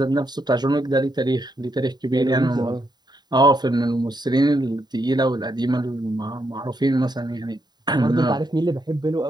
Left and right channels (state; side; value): late; left; 0.20 ms